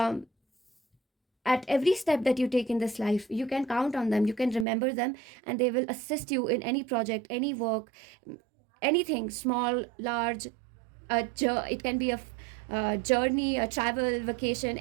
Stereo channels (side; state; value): left; drops out; at 4.7 s